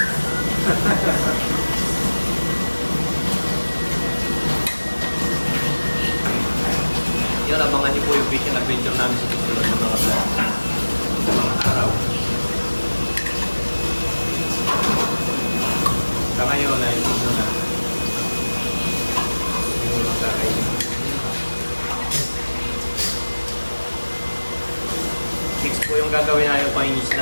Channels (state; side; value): inverted; both; correlation -1.00